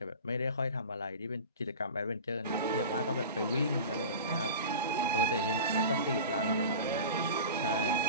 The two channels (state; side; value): inverted; both; correlation -0.34